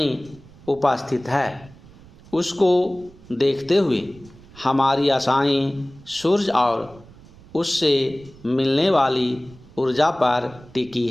उपस्थित है, उसको देखते हुए हमारी आशाएं सूर्य और उससे मिलने वाली ऊर्जा पर टिकी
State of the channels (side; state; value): right; noise; rumble, 23 dB below the sound